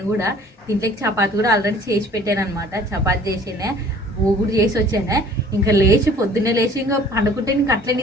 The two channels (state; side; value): normal; both; correlation 0.52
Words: కూడా దీంట్లోకి చపాతి కూడా ఆల్రెడీ చేసి పెట్టాను అనమాట. చపాతి చేసినే ఊగుడు చేసి వచ్చానే. ఇంకా లేచి పొద్దున్నే లేచి ఇంకా పండుకుంటే ఇంకా అట్లే